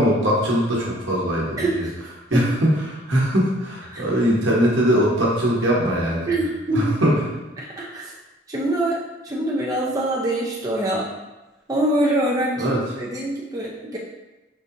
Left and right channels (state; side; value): normal; both; correlation 0.56